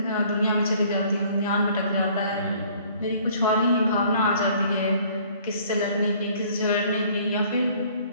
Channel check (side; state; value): both; inverted; correlation -0.57